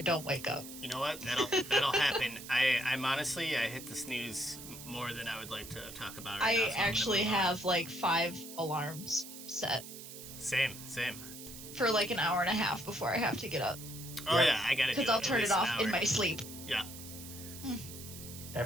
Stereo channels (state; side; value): noise; right; hiss, 13 dB below the sound